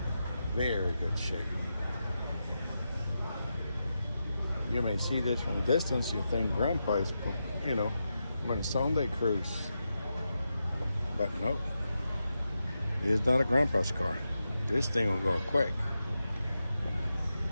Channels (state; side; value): inverted; both; correlation -0.88